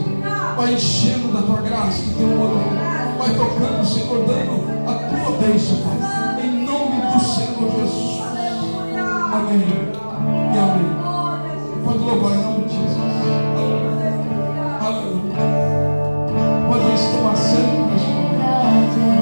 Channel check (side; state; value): both; inverted; correlation -1.00